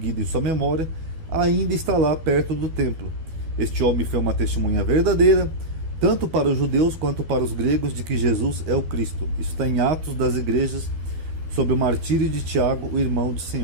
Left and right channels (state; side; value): late; left; 12 ms